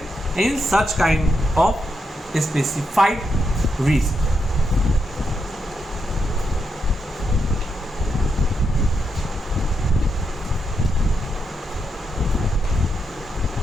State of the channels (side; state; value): both; normal; correlation 0.82